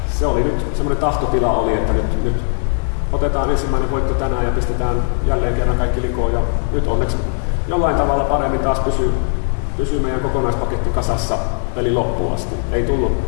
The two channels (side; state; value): right; silent; 56 dB below the other